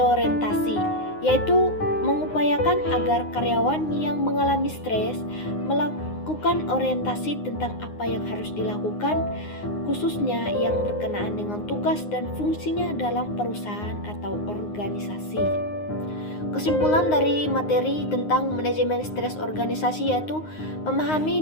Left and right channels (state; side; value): late; right; 9.6 ms